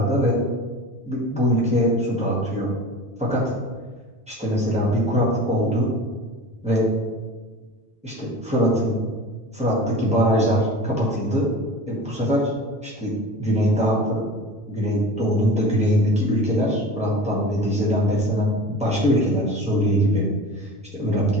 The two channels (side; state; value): both; normal; correlation 0.36